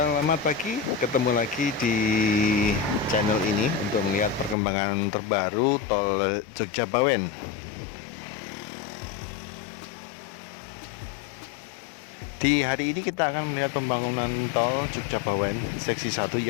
pagi, ketemu lagi di channel ini untuk melihat perkembangan terbaru tol Jogja Bawen. Di hari ini kita akan melihat pembangunan tol Jogja Bawen seksi 1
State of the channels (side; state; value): right; drops out; at 4.5 s